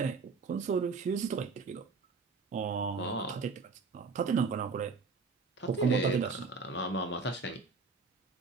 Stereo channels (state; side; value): quieter; left; 4.5 dB